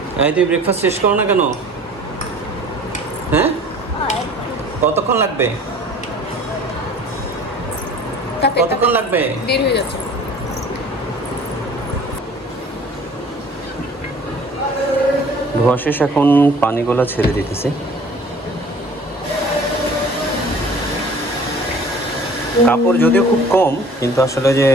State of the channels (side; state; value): both; normal; correlation 0.48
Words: এই তুই ব্রেকফাস্ট শেষ করো না কেন? হ্যাঁ, কতক্ষণ লাগবে? কতক্ষণ লাগবে? দেরি হয়ে যাচ্ছে। ধোয়া শেষ, এখন পানিগুলো ছেড়ে দিতেছি। কাপড় যদিও খুব কম, কিন্তু আসলে যে